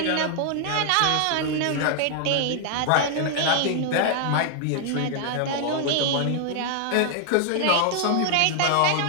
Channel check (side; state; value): both; different; correlation 0.00